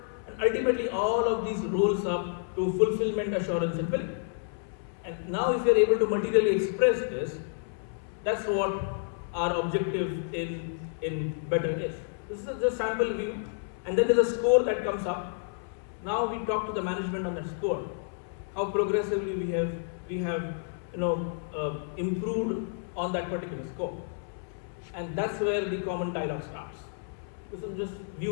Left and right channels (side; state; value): right; silent; 58 dB below the other